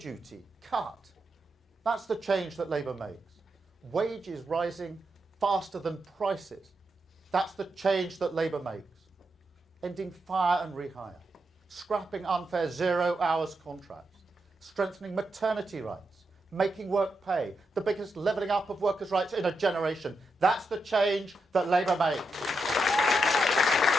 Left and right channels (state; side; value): normal; both; correlation 0.85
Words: cut. That's the change that Labour makes. Wages rising faster than prices. That's the change that Labour makes. Ending fire and rehire. Scrapping unfair 0 hours contracts. Strengthening maternity rights. Making work pay. The biggest levelling up of workers' rights in a generation. That's the change that Labour makes.